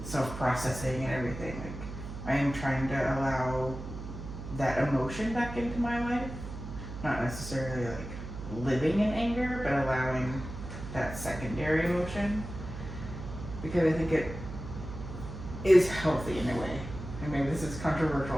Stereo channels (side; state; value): right; noise; hum, 9 dB below the sound